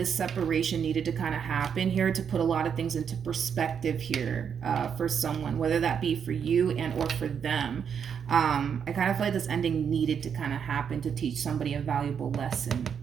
separation needed to kind of happen here to put a lot of things into perspective here for someone, whether that be for you and or for them. I kind of feel like this ending needed to kind of happen to teach somebody a valuable lesson.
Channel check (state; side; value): quieter; left; 7.4 dB